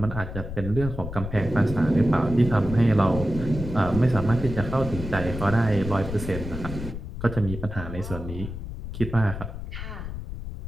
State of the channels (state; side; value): noise; left; rumble, 8 dB below the sound